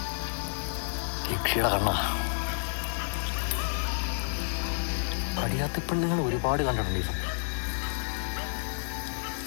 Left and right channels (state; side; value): silent; right; digital silence